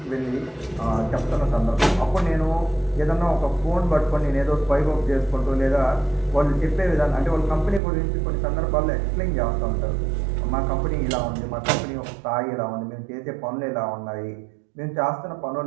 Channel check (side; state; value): left; drops out; at 7.8 s